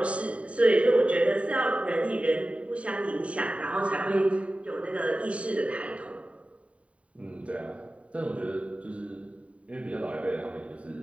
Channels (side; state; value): left; late; 0.065 ms